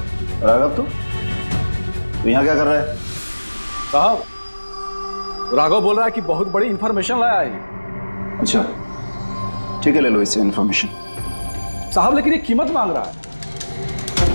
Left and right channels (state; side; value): inverted; both; correlation -1.00